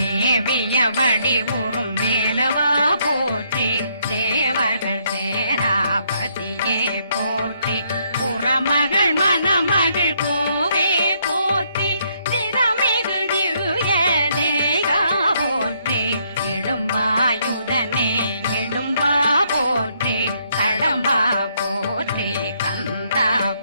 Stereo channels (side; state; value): both; inverted; correlation -0.71